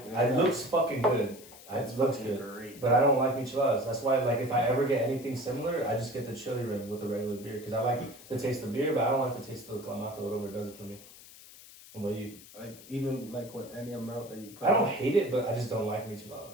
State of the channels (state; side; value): noise; left; hiss, 19 dB below the sound